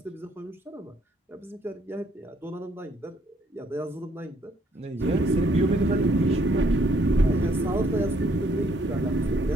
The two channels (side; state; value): both; normal; correlation 0.67